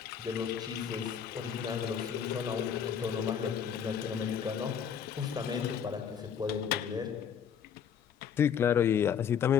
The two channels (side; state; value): right; quieter; 8.0 dB